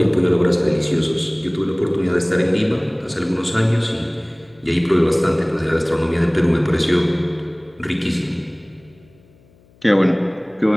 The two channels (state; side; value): noise; left; hum, 30 dB below the sound